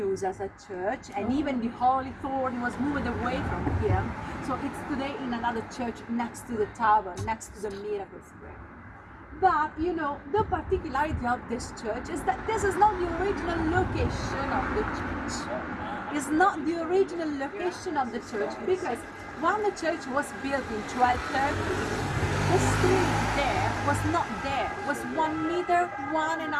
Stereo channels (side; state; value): both; identical; correlation 1.00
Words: as a church, and even the holy thorn was moved away from here. So it's today in another church next to the tower, next to the Miracle Square. But you know, the particularity of this church is that this is not the original location of the church. It's not the original location of the church, because when the church was built in 1230, the street there was not there. It was 1 meter,